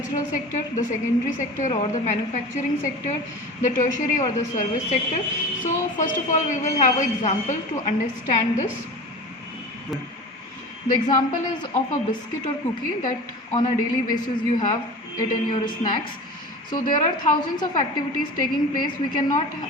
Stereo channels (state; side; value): normal; both; correlation 0.34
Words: sector, the secondary sector or the manufacturing sector, the tertiary or the service sector. So first of all we will have an example to understand this. The example is of a biscuit or cookie that on a daily basis you have it in your snacks. So there are thousands of activities taking place. We cannot